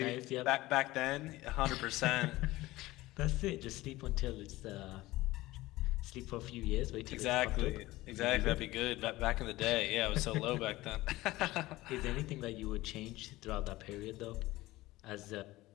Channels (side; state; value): right; quieter; 18.4 dB